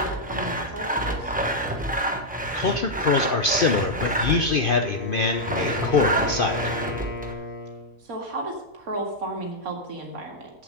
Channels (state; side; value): normal; both; correlation -0.04